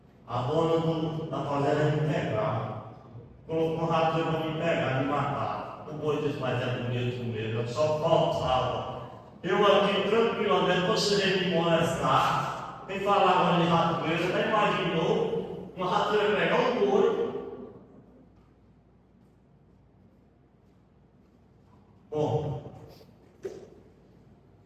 a dona da fazenda me pegar, colocou um ratoeiro para me pegar, me matar. O boi disse: mas é bonito mesmo, eu só faltava. Eu aqui tranquilamente, você veio me molestar, vem falar agora de ratoeiro, já imaginou uma ratoeira pegar um boi? Bom,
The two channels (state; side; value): identical; both; correlation 1.00